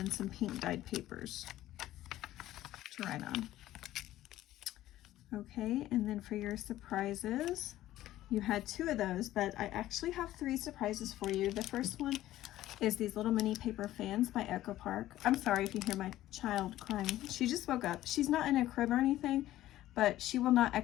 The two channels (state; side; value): quieter; right; 14.5 dB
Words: some pink dyed papers to write on. Okay, and then for your surprises, you had 2 of those, but I actually have 3 surprises for you. The first one is these little mini paper fans by Echo Park. I'm sorry if you hear my child crying. She just woke up. She's not in a crib or anything, but she will not